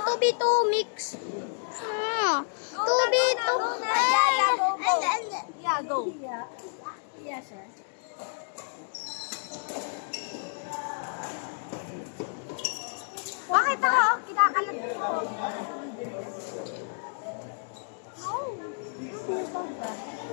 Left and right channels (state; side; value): silent; right; digital silence